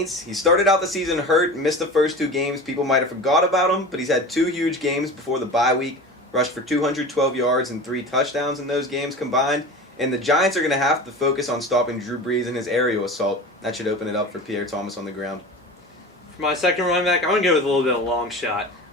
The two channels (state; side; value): normal; both; correlation 0.33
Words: He started out the season hurt, missed the first 2 games. People might have forgot about him, but he's had 2 huge games before the bye week. Rushed for 212 yards and 3 touchdowns in those games combined. And the Giants are going to have to focus on stopping Drew Brees and his aerial assault. That should open it up for Pierre Thomas on the ground. For my second running back, I'm going to go with a little bit of a long shot.